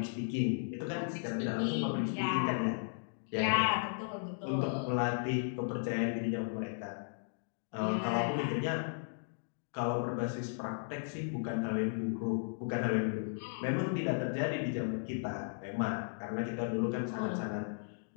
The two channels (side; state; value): right; silent; digital silence